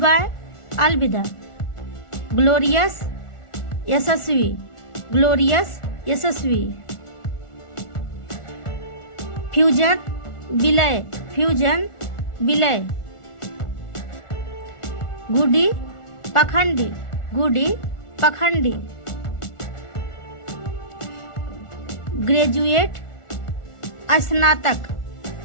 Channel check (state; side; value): late; right; 1.4 ms